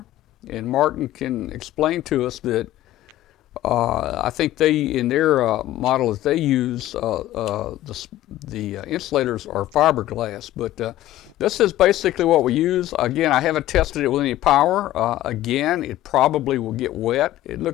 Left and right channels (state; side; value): quieter; right; 14.6 dB